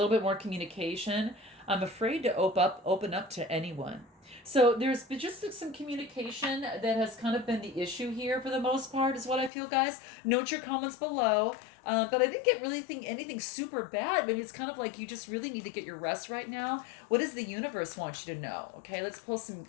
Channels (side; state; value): right; drops out; at 9.5 s